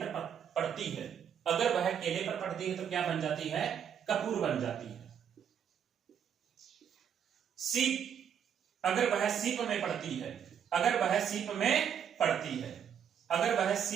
पड़ती है, अगर वह केले पर पड़ती है तो क्या बन जाती है? कपूर बन जाती है। सीप अगर वह सीप में पड़ती है, अगर वह सीप में पड़ती है, अगर वह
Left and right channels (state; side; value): quieter; left; 8.3 dB